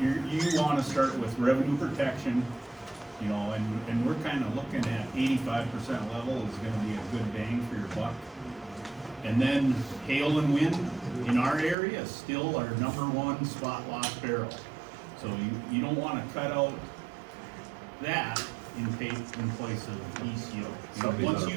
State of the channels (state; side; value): drops out; left; at 11.8 s